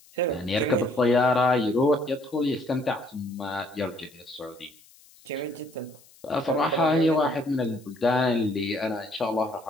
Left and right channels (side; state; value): left; noise; hiss, 27 dB below the sound